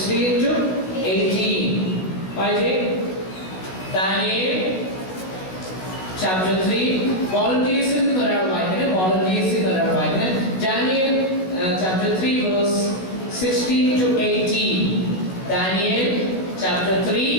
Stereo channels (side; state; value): right; late; 16 ms